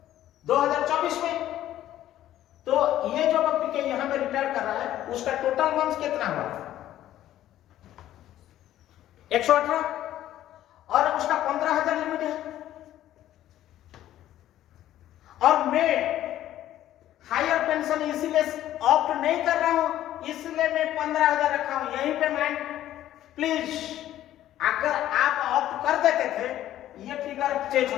2024 में। तो ये जो पीके यहां पे रिटायर कर रहा है, उसका टोटल मंथ कितना हुआ? 118 और उसका 15,000 लिमिट है। और मैं हायर पेंशन इसीलिए ऑप्ट नहीं कर रहा हूं, इसलिए मैं 15,000 रखा हूं। यहीं पे मैं प्लीज, अगर आप ऑप्ट कर देते थे ये फिगर चेंज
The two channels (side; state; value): right; quieter; 12.9 dB